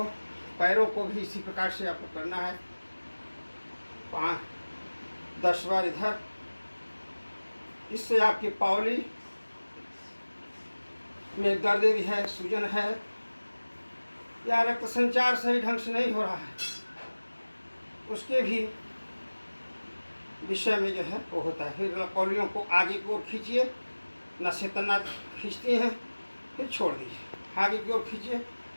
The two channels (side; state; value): both; inverted; correlation -1.00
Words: पैरों को भी इसी प्रकार से आपको करना है। 5-10 बार इधर। इससे आपकी पावली में दर्द भी है, सूजन है या रक्त संचार सही ढंग से नहीं हो रहा है, उसके भी विषय में जो है वो होता है। फिर कौलियों को आगे की ओर खींचिए, नसें तना खींचती हैं, फिर छोड़ दीजिए। आगे की ओर खींचिए,